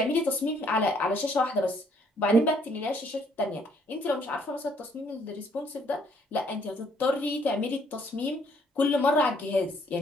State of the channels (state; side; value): normal; both; correlation 0.65